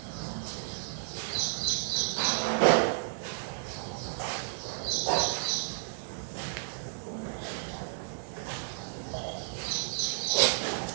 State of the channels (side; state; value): left; silent; digital silence